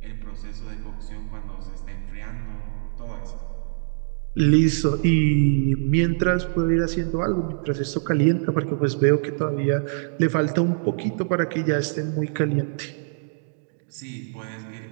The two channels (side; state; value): left; silent; digital silence